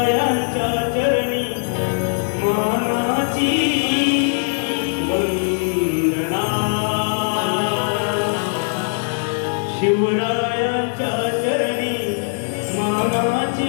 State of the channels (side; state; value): right; silent; 66 dB below the other